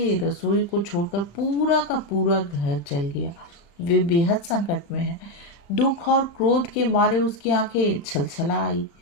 रसोई को छोड़कर पूरा का पूरा घर जल गया। वे बेहद संकट में हैं। दुख और क्रोध के मारे उसकी आंखें छलछला आई।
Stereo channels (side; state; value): right; late; 35 ms